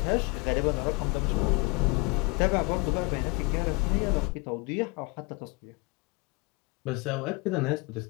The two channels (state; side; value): quieter; right; 27.6 dB